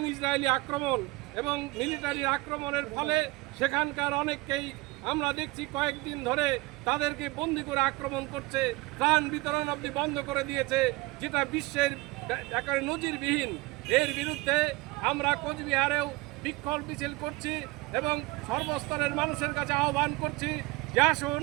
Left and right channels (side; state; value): left; quieter; 22.4 dB